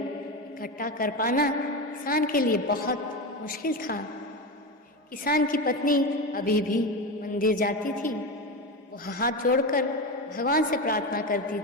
कर पाना किसान के लिए बहुत मुश्किल था। किसान की पत्नी अभी भी मंदिर जाती थी। वो हाथ जोड़कर भगवान से प्रार्थना करती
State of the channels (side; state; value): both; normal; correlation 0.19